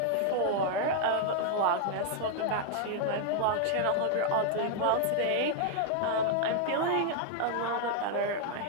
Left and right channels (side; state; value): both; different; correlation 0.00